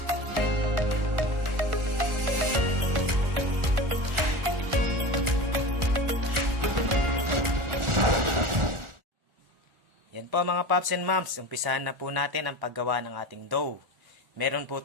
Yan po mga Pops and Moms. Umpisahan na po natin ang paggawa ng ating dough. Meron po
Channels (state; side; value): late; left; 1.4 ms